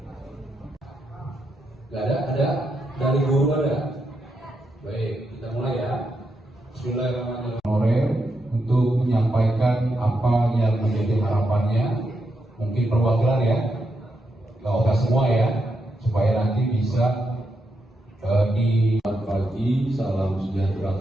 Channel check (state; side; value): normal; both; correlation 0.83